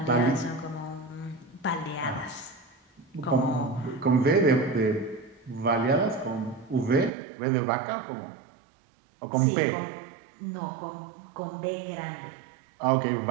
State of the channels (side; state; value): left; drops out; at 7.1 s